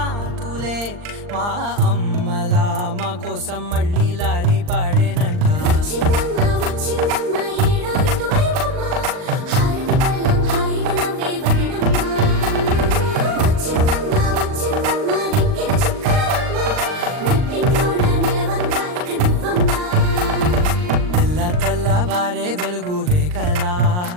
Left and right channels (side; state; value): left; late; 39 ms